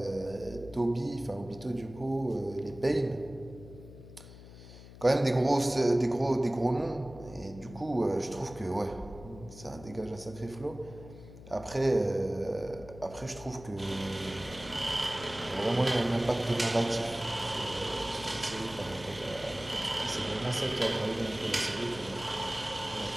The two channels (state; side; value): noise; left; hum, 16 dB below the sound